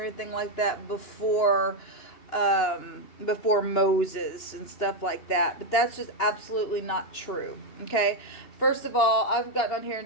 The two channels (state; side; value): late; right; 2.9 ms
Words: anything like that before Moses and stuff like that. But that's just absolutely not true. Okay. First of all, I've gotten on here